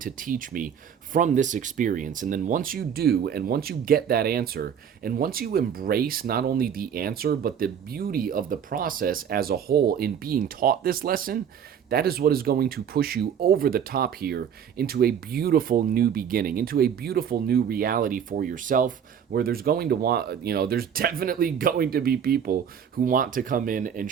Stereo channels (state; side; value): quieter; left; 8.1 dB